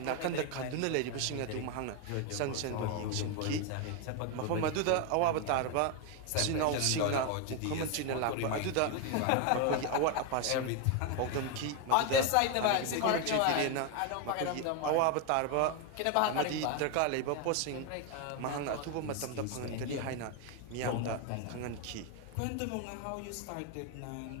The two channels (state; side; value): different; both; correlation 0.01